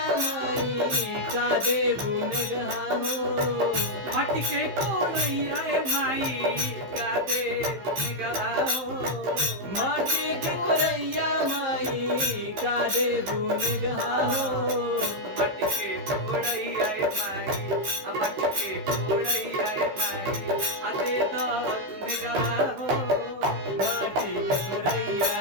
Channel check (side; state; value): left; late; 15 ms